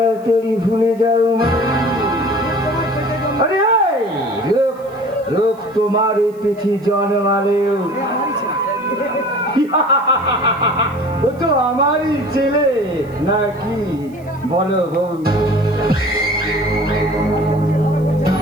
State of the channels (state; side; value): noise; right; hiss, 30 dB below the sound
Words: ভুলে যাও। আরে এই লোক তোমার এই পিঠি জন্মালেও ও তো আমারই ছেলে নাকি বলো বউ?